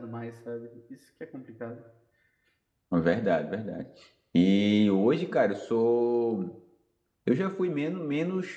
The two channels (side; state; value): both; identical; correlation 1.00